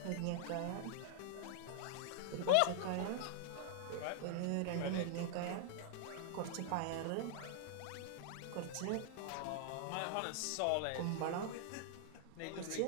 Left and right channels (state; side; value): different; both; correlation -0.01